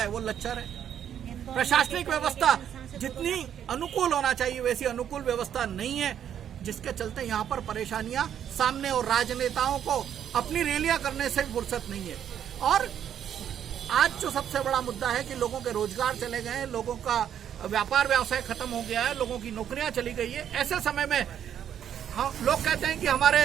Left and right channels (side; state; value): left; quieter; 9.5 dB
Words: वो लच्चर है। प्रशासनिक व्यवस्था जितनी अनुकूल होना चाहिए वैसी अनुकूल व्यवस्था नहीं है, जिसके चलते यहाँ पर परेशानियां सामने और राजनेताओं को अपनी रैलियां करने से भी फुर्सत नहीं है। और आज जो सबसे बड़ा मुद्दा है कि लोगों के रोजगार चले गए हैं, लोगों का व्यापार व्यवसाय खत्म हो गया है, लोगों की नौकरियां चली गई है। ऐसे समय में हम लोग कहते हैं कि हमारे